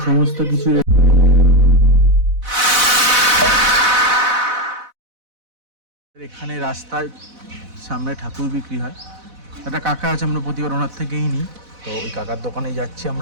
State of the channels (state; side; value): late; left; 4.0 ms